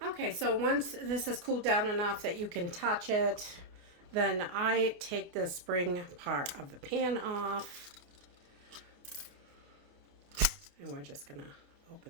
so once this is cooled down enough that you can touch it, then I take the spring part of the pan off, and we're just gonna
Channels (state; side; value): late; left; 28 ms